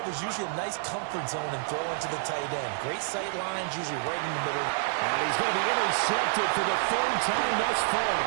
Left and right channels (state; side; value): silent; left; digital silence